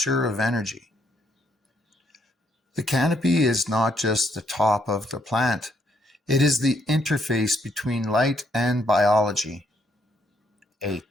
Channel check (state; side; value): normal; both; correlation 0.72